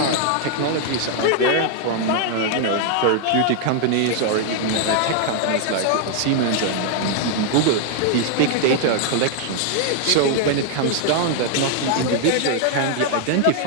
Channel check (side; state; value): both; different; correlation 0.00